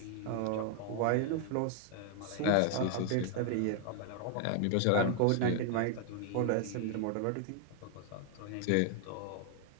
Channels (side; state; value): both; different; correlation 0.00